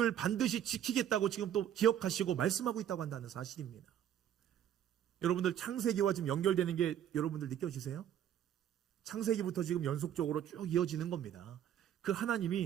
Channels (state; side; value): quieter; left; 10.3 dB